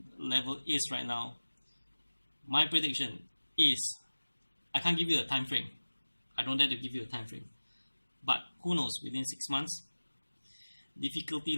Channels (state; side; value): inverted; both; correlation -1.00